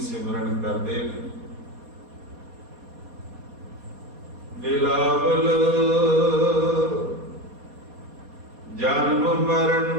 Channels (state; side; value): late; left; 4.2 ms